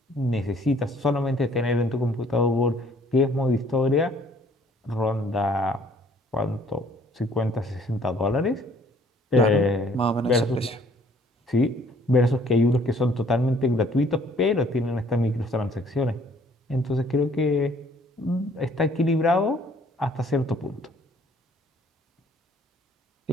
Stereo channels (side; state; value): both; normal; correlation 0.59